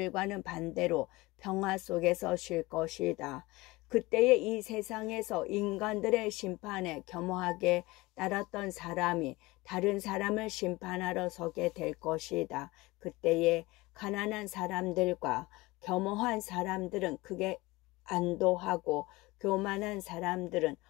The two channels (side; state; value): right; quieter; 21.5 dB